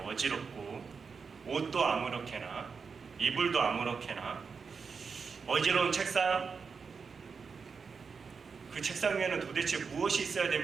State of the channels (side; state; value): left; quieter; 5.4 dB